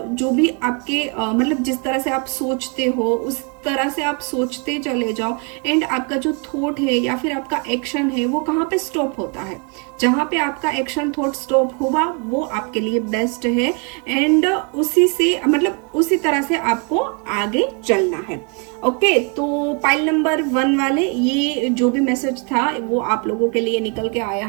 जो भी आपके मतलब जिस तरह से आप सोचते हो उस तरह से आप सोचते चले जाओ एंड आपका जो थॉट है या फिर आपका एक्शन है वो कहाँ पे स्टॉप होता है। जहाँ पे आपका एक्शन थॉट स्टॉप हुआ वो आपके लिए बेस्ट है एंड उसी से मतलब उसी तरह से आपको आगे चलना है। ओके, तो पाइल नंबर 1 वाले ये जो भी मैसेज था वो आप लोगों के लिए निकल के आया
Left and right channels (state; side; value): quieter; left; 35.4 dB